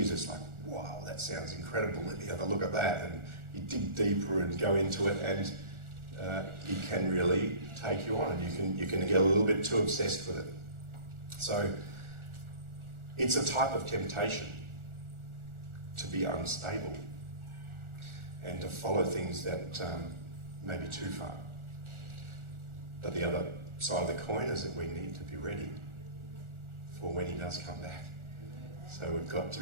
it's like, wow, that sounds incredible. Let me have a look at that. And you dig deeper and go into it, and it can really take you on, and you can get a little bit too obsessed with it. So it's a type of temptation to be unstable and to follow things that may be too far. But the other side of the coin is that we need to be ready for when he does come back. So we've got to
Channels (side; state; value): left; late; 1.4 ms